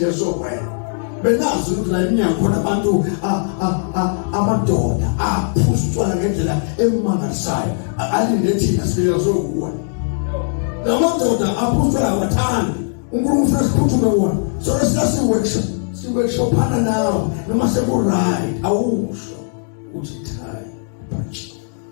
sokwena benazi ukuthi la iminyaka khona abantu amadoda aphuza utshwala ngendlela emangalisayo alinde thina sifike sokuwa namadoda aphuza utshwala wathanda uNkulunkulu ufuna siphuthume wona so si-workshop phana nawe noma seku-right awusho uthi thai punch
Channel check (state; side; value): silent; right; digital silence